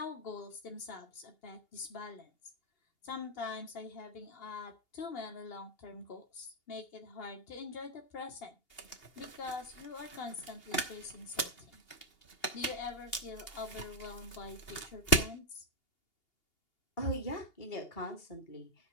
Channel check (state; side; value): late; right; 2.8 ms